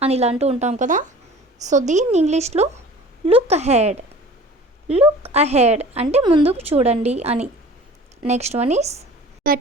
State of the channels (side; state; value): both; normal; correlation 0.43